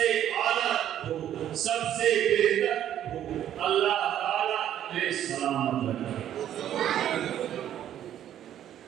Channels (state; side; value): quieter; left; 11.0 dB